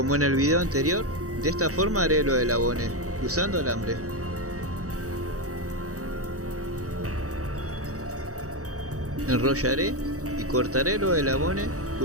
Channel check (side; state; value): left; late; 0.66 ms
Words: en el video anterior, de esta forma haré lo del abone, usando alambre. Enrollaré y cortaré lo del abone